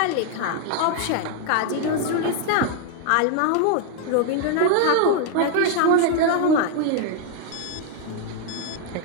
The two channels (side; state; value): both; different; correlation 0.00